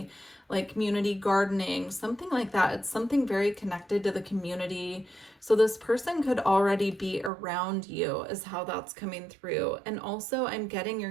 like community gardening, something like that. It's something very connected to the community. So this person could already be around you is how that's coming through. And also I'm getting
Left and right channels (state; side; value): drops out; left; at 7.3 s